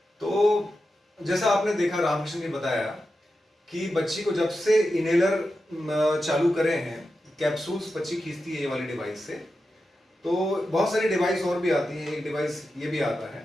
तो जैसा आपने देखा, रामकृष्ण ने बताया कि बच्ची को जब से इनहेलर चालू करे हैं, कैप्सूल्स बच्ची खींचती है ये वाली डिवाइस से, तो बहुत सारी डिवाइस और भी आती है, एक डिवाइस ये भी आता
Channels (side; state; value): both; normal; correlation 0.90